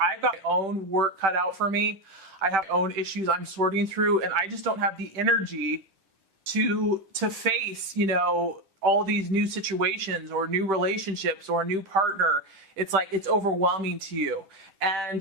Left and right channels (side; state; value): left; late; 10 ms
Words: got my own work cut out for me. I have my own issues I'm sorting through, and I just don't have the energy to face, all these new situations or new relationships or a new partner. It's like, it's overwhelming to you.